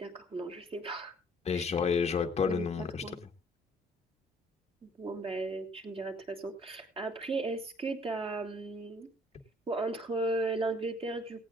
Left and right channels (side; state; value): both; normal; correlation 0.59